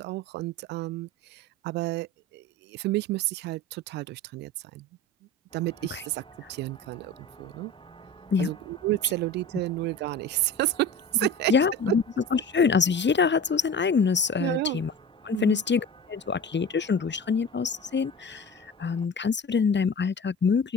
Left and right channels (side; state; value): both; normal; correlation 0.35